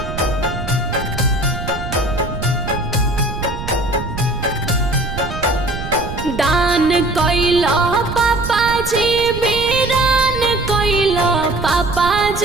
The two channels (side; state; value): right; noise; rumble, 8 dB below the sound